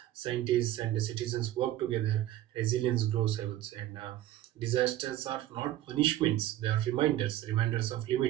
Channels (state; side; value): quieter; left; 13.7 dB